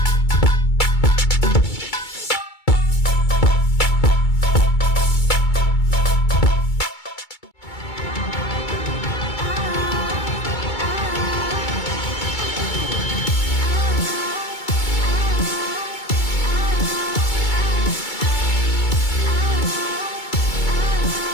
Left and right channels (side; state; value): right; late; 2.3 ms